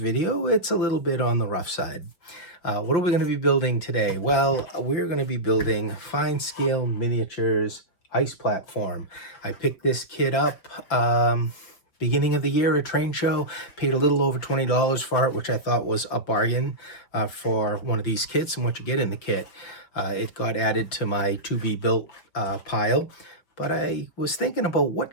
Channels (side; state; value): right; late; 5.7 ms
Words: it's a little bit on the rough side. What are we going to be building today? Well, we're going to be building fine scale miniatures ice platform. I picked this kit up beginning of the year at train show, paid a little over $20 for it, which I thought was a bargain for one of these kits and what you get in the kit. It got added to my to be built pile, but I was thinking about